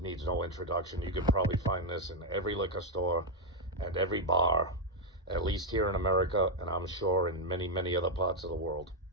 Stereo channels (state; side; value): normal; both; correlation 0.01